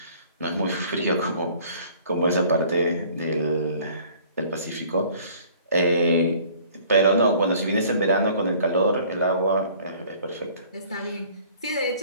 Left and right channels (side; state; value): both; inverted; correlation -0.53